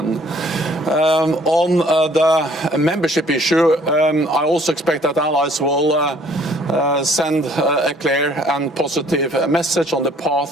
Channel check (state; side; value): normal; both; correlation 0.59